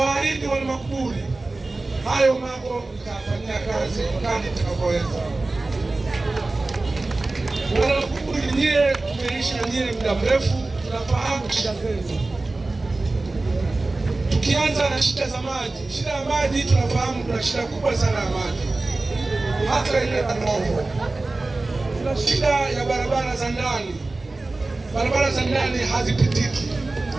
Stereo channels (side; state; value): left; quieter; 3.2 dB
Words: wana Makuburi hayo mambo nitafanyia kazi kadri nitakavyoweza. Wana Makuburi, nyie tumeishi na nyie muda mrefu, tunafahamu shida zenu. Tukianza na shida za maji, shida ya maji tunafahamu kuna shida kubwa sana ya maji, hata ile Kanovo. Kuna shida ya barabara za ndani, barabara za ndani hazipitiki,